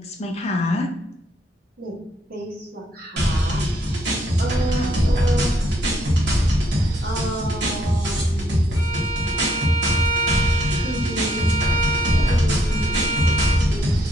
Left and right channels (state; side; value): normal; both; correlation 0.70